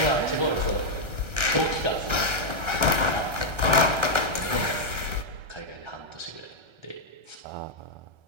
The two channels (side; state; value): left; late; 1.3 ms